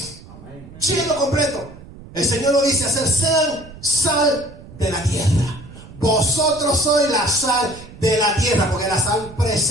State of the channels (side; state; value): right; noise; rumble, 18 dB below the sound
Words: Amén. Lleno, completo. El Señor nos dice: hacer sean sal de la tierra. Vosotros sois la sal de la tierra, porque la sal